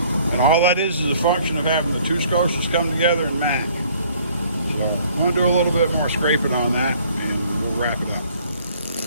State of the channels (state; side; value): inverted; both; correlation -0.59